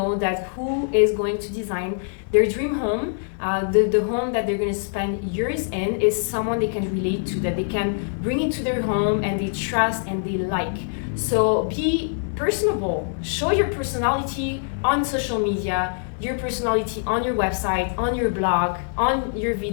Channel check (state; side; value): silent; right; digital silence